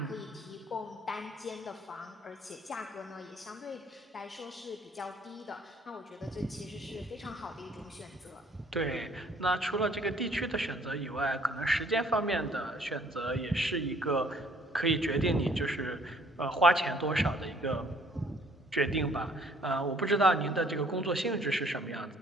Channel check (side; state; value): both; normal; correlation 0.60